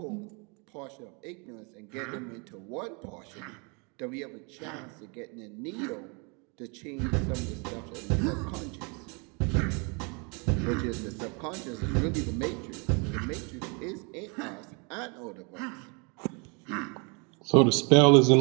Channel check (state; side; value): quieter; left; 32.9 dB